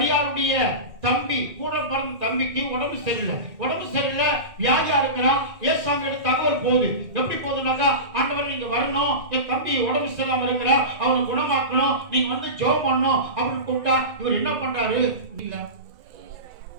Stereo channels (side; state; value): left; late; 2.1 ms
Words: தம்பி கூட பிறந்த தம்பிக்கு உடம்பு சரியில்லை, வியாதியா இருக்கிறான். ஏசாமி தகவல் போகுது. எப்படி போகுதுனாக்கா, ஆண்டவர் நீங்க வரணும், என் தம்பி உடம்பு சரியில்லாம இருக்கிற, அவனை குணமாக்கணும், நீங்க வந்து ஜெபம் பண்ணணும் அப்படின்னு கூப்பிட்டா இவர் என்ன பண்றாரு? இல்ல